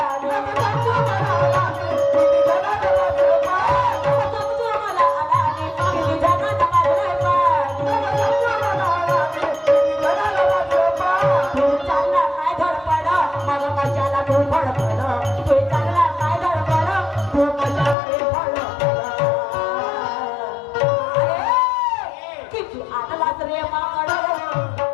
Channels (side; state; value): right; drops out; at 17.9 s